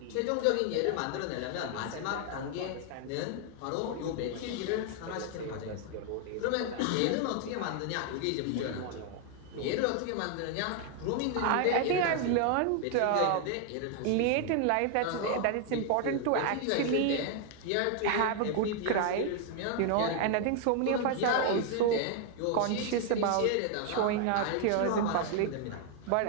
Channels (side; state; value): both; different; correlation 0.00